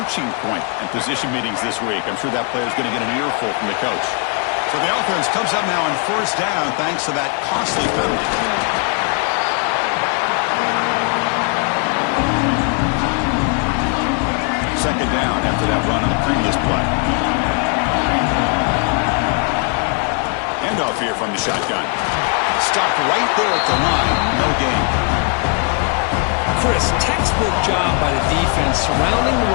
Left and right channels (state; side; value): quieter; right; 37.5 dB